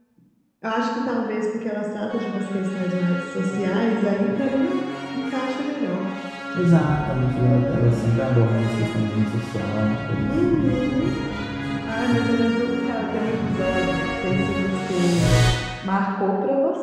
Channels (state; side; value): identical; both; correlation 1.00